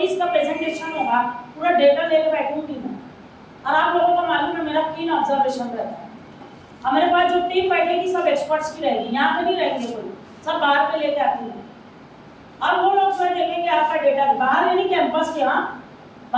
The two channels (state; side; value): identical; both; correlation 1.00